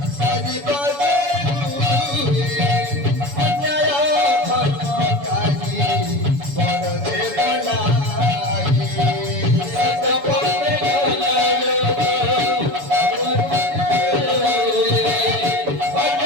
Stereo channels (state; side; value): late; left; 7.0 ms